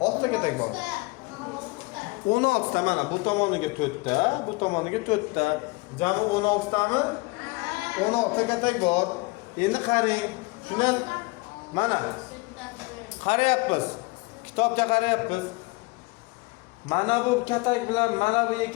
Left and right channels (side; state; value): right; quieter; 25.3 dB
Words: ta katak bor. 16 ta mana bu tomoniga 4 ta, bu tomoniga 4 ta. Jami 16 tami? 16 ta katak bor. Endi qarang. Shundan mana qarayapmiz. Kitobga qarayapmiz. Mana bu katak bilan mana bu